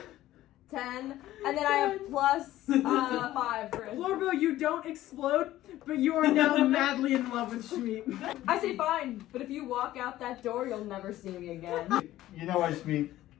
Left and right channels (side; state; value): right; quieter; 14.7 dB